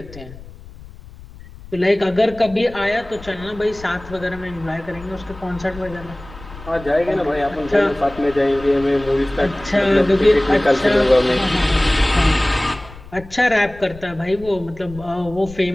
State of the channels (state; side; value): noise; left; rumble, 17 dB below the sound